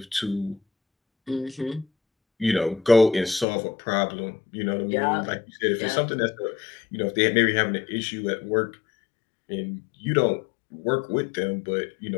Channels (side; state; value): right; drops out; at 3.5 s